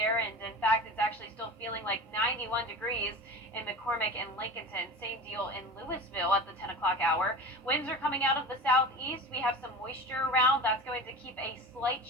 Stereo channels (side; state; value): both; normal; correlation 0.33